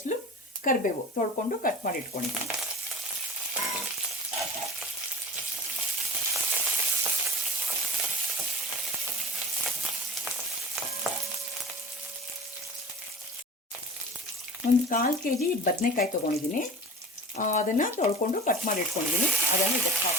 ಕರಿಬೇವು ತೊಳ್ಕೊಂಡು ಕಟ್ ಮಾಡಿ ಇಟ್ಕೊಂಡಿದ್ದೀನಿ. ಒಂದು 1/4 kg ಬದನೆಕಾಯಿ ತೊಗೊಂಡಿದ್ದೀನಿ. ಅದನ್ನು ತೊಳ್ಕೊಂಡು ಕಟ್ ಮಾಡಿ ಇಟ್ಕೊಂಡಿದ್ದೀನಿ. ಅದನ್ನು ಇದಕ್ಕೆ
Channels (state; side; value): normal; both; correlation 0.39